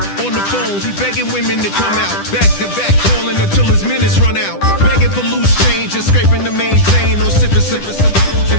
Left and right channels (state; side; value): late; right; 10 ms